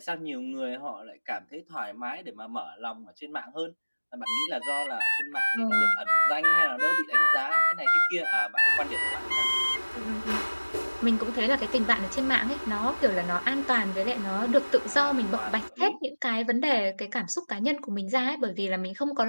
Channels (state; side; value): inverted; both; correlation -1.00